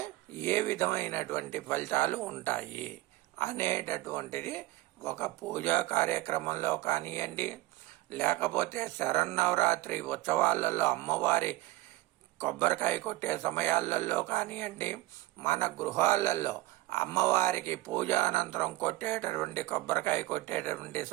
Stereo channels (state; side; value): quieter; left; 18.2 dB